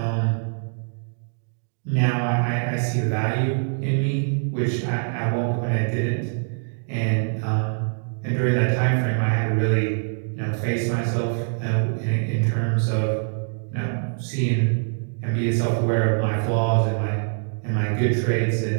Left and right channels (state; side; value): silent; left; digital silence